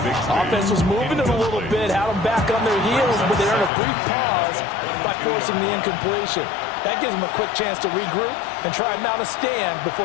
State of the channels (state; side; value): drops out; right; at 3.7 s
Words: Offense was moving it a little bit, had them back on their heels, but they earned a brief pause by forcing the incompletion. That gives them a quick chance to regroup and try and mount a stand